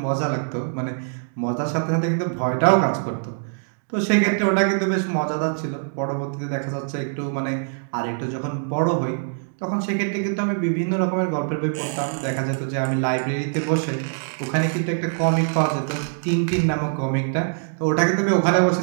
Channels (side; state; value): left; silent; digital silence